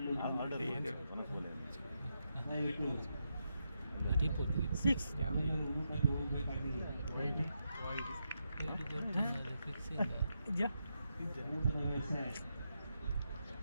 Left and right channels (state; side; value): inverted; both; correlation -0.84